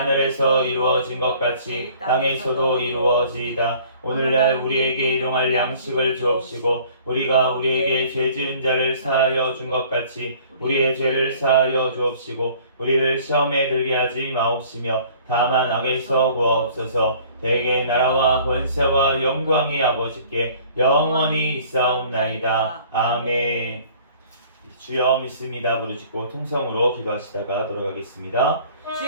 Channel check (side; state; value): both; inverted; correlation -0.53